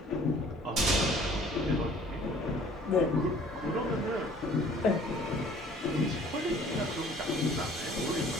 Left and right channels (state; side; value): normal; both; correlation 0.53